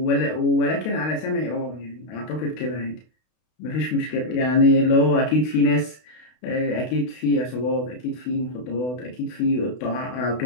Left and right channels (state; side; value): late; right; 32 ms